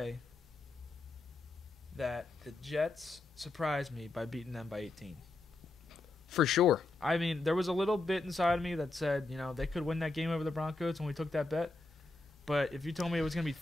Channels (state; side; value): quieter; right; 3.1 dB